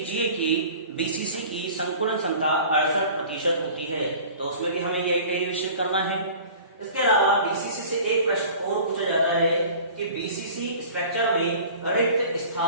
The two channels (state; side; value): inverted; both; correlation -0.43